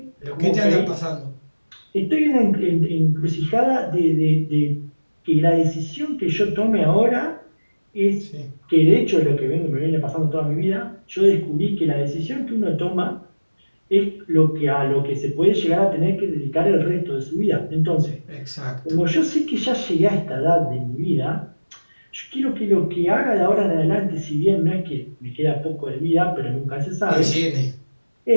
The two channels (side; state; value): both; inverted; correlation -1.00